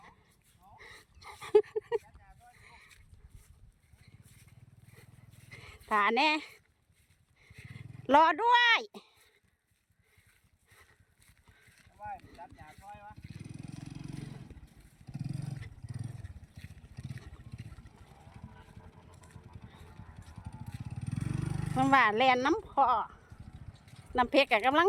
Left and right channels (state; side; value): identical; both; correlation 1.00